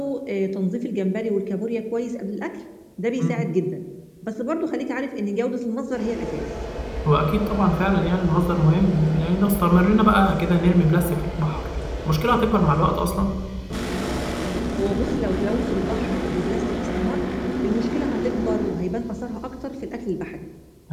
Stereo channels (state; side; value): identical; both; correlation 1.00